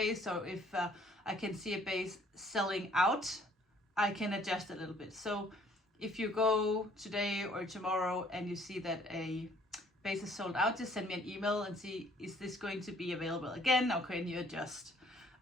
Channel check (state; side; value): normal; both; correlation 0.60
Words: So if I can see a base selling out, I can adjust a little bit. So if you go today or tomorrow and you see that a base is sold out, just send me an email and see, is this going to be available again, or can you adjust?